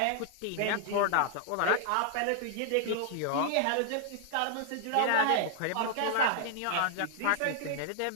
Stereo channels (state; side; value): different; both; correlation -0.01